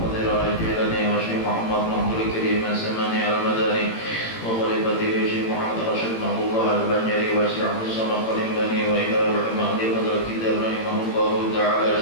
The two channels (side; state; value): right; late; 18 ms